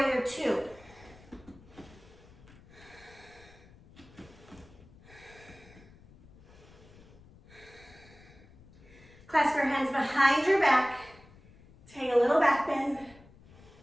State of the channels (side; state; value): left; noise; rumble, 23 dB below the sound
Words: two. Clasp your hands behind your back. Take a little back bend.